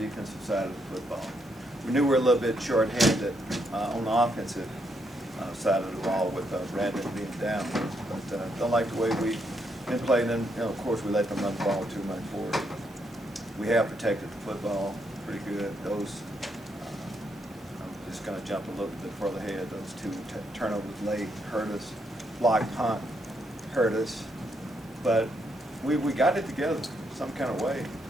defensive side of the football. We knew we were a little bit short-handed on the offensive side of the ball with Brandon being down, but don't like the way we been playing them. Of course, we let them run the ball too much forward. We have protected the football pretty good. Those, I'm just going to jump a little bit further ahead. Those two turnovers late hurt us. Blocked punt hurt us, but we got it together some kind of way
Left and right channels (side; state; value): both; normal; correlation 0.77